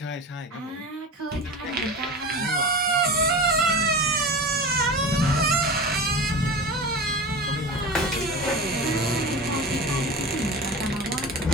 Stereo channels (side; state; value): both; normal; correlation 0.30